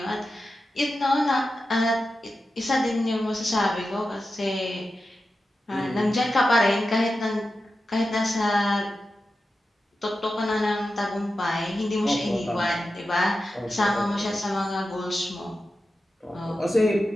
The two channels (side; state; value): both; normal; correlation 0.91